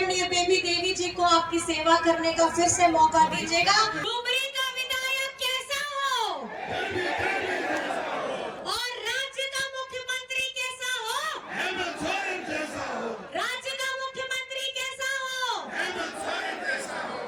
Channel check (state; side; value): identical; both; correlation 1.00